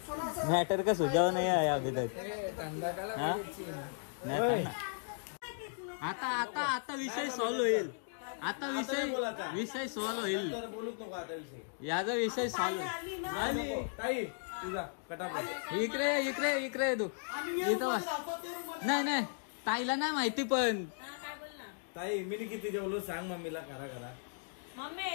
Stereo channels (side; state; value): right; silent; digital silence